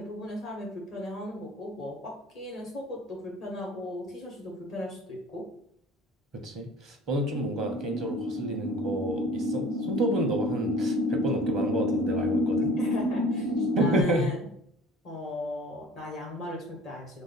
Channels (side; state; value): both; normal; correlation 0.47